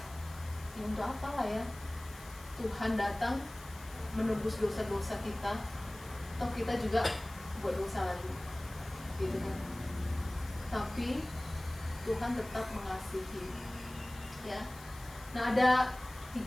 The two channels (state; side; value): noise; left; hiss, 19 dB below the sound